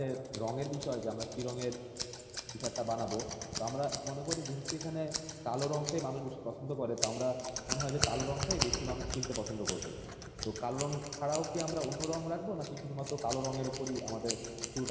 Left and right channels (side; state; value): both; identical; correlation 1.00